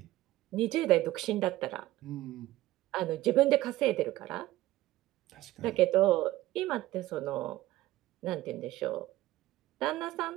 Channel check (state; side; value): quieter; left; 16.2 dB